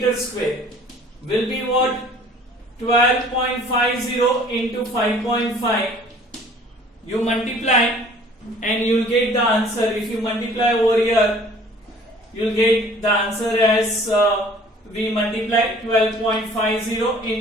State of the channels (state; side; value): normal; both; correlation 0.52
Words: square will be what? 12.50 into 5.5. You multiply and you will get the answer. If you multiply over here, you will get the answer as we multiply 12.50